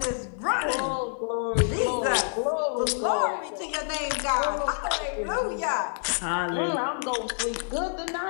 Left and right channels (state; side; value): silent; right; 60 dB below the other